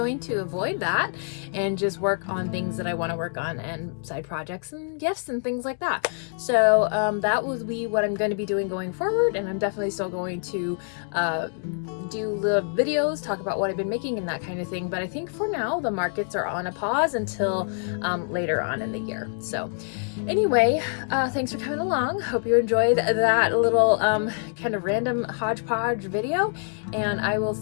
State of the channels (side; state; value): right; silent; 60 dB below the other